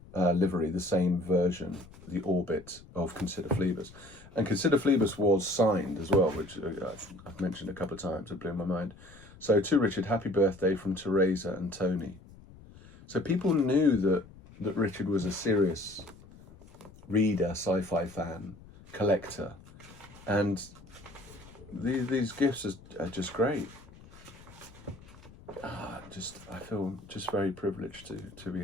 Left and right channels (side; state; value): left; noise; rumble, 21 dB below the sound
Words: livery, the same version, the orbit of Consider Phlebas. And Consider Phlebas was signed as well, which I've mentioned a couple of times. It blew my mind. So to Richard, happy birthday from Teresa and Tony. So people knew that Richard was a serious reader, sci-fi fan, collector, and these gifts are just great. I feel just very privileged to be